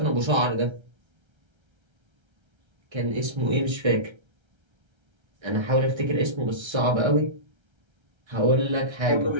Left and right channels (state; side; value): late; left; 1.3 ms